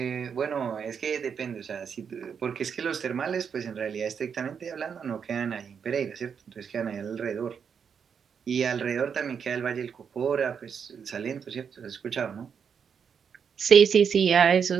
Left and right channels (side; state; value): left; quieter; 6.9 dB